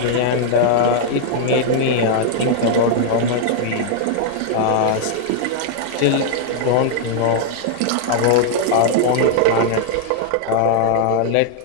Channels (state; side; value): different; both; correlation -0.01